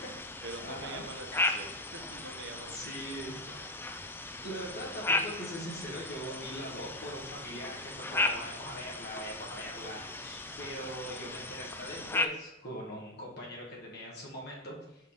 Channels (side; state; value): both; normal; correlation 0.03